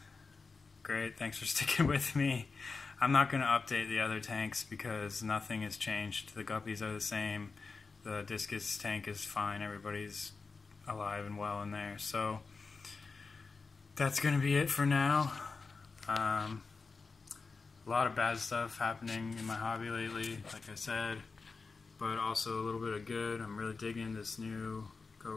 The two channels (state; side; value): quieter; right; 4.4 dB